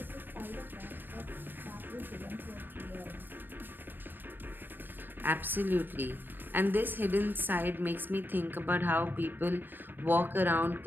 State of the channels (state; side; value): late; left; 0.093 ms